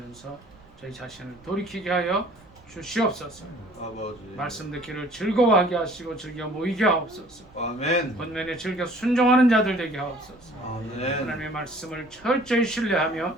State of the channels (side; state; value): right; noise; rumble, 27 dB below the sound